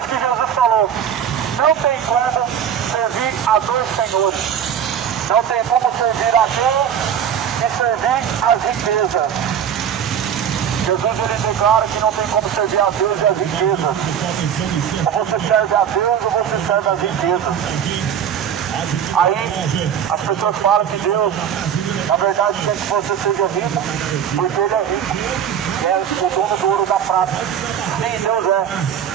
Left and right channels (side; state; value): left; quieter; 8.7 dB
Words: que Jesus falou, não tem como servir a dois senhores. Não tem como servir a Deus e servir as riquezas. Jesus, ele declara que não tem como servir a Deus e as riquezas. Ou você serve a Deus ou você serve as riquezas. Aí as pessoas falam que Deus, na verdade, quer que você seja rico, porque Ele é rico. É o dono do ouro da prata. Sim, Deus é.